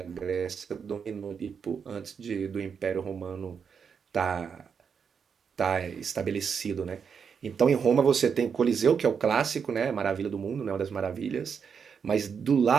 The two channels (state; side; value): quieter; left; 6.5 dB